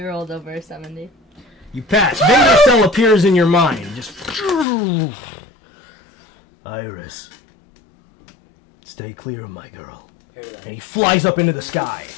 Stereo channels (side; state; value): right; drops out; at 4.7 s